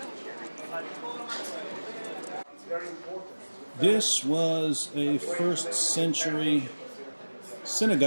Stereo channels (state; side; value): inverted; both; correlation -1.00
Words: This was a first century